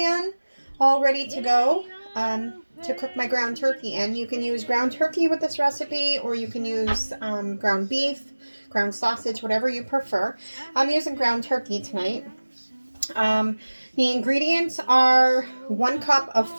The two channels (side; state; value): both; inverted; correlation -1.00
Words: all ready to go to cook my ground turkey in. You can use ground turkey with this recipe, or you can use ground beef, ground sausage, whatever you prefer. I'm using ground turkey tonight. The ingredients are 1 cup of